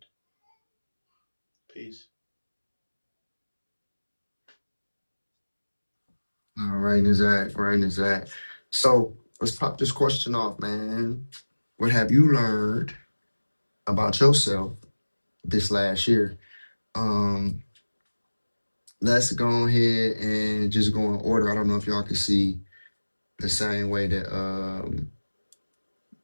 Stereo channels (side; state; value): both; inverted; correlation -1.00